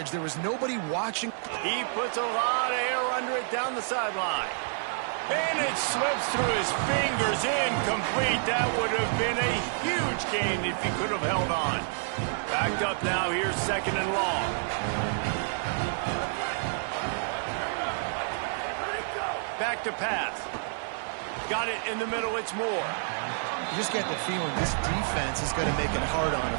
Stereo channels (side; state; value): left; silent; digital silence